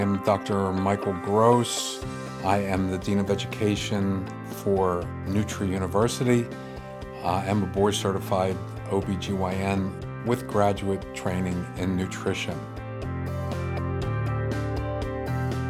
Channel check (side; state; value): both; identical; correlation 1.00